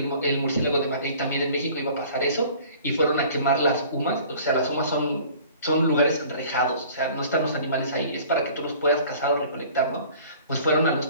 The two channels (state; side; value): inverted; both; correlation -0.49